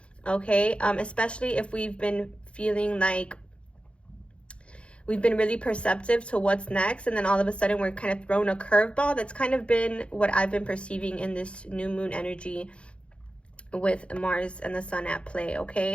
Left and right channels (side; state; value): right; late; 0.059 ms